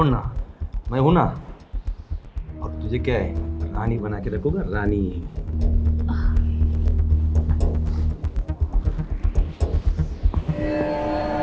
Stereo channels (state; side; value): identical; both; correlation 1.00